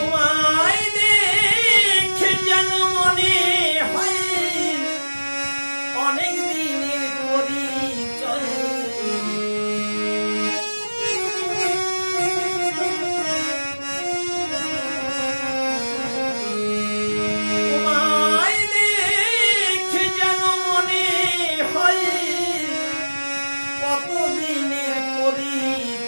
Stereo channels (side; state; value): both; inverted; correlation -1.00